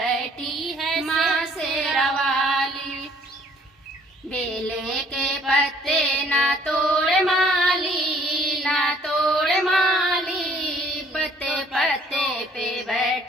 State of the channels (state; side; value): normal; both; correlation 0.60